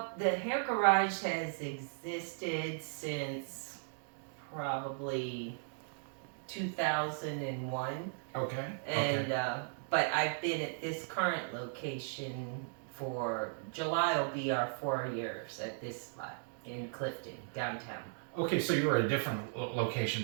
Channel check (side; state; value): left; silent; digital silence